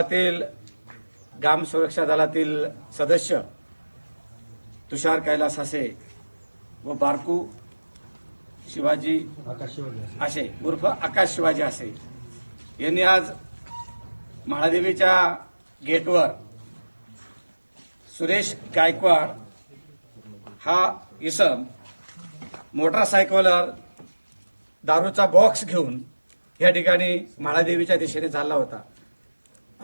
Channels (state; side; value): inverted; both; correlation -1.00